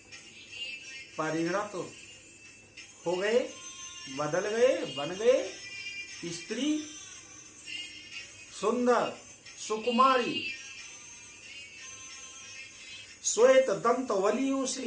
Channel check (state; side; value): identical; both; correlation 1.00